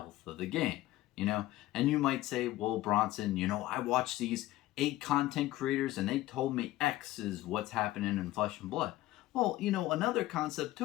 of the game. And you might say, well, Bronson, I watch these 8 content creators and they told me X is what's happening in Flesh and Blood. Well, another concept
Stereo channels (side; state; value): right; quieter; 16.2 dB